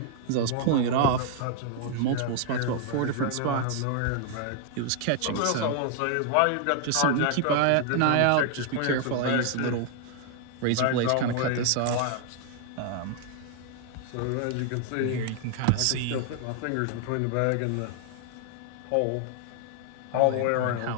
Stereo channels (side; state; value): both; different; correlation 0.00